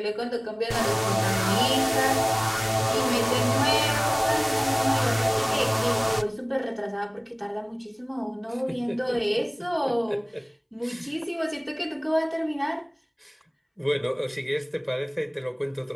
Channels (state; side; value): identical; both; correlation 1.00